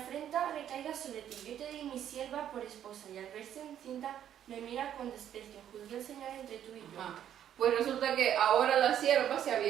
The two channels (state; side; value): quieter; left; 10.3 dB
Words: recaiga sobre ti, yo te di mi sierva por esposa, y al verse encinta me mira con desprecio. Juzgue el Señor entre tú y yo. Ajá. Pues resulta que ahora la sierva se